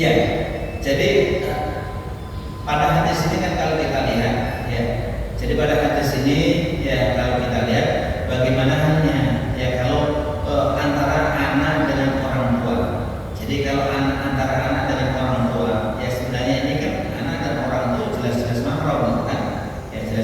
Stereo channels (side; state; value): both; identical; correlation 1.00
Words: jadi pada hadis ini kan kalau kita lihat, ya, jadi pada hadis ini ya kalau kita lihat bagaimana halnya, ya kalau antara anak dengan orang tua. Jadi kalau antara anak dengan orang tua, ya sebenarnya ini kan anak dan orang tua jelas-jelas mahram, kan? Ya